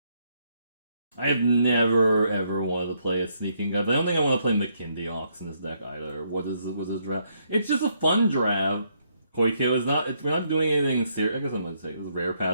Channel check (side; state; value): both; inverted; correlation -0.74